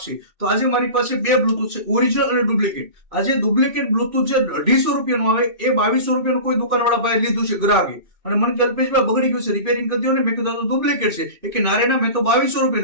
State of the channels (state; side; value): late; left; 2.6 ms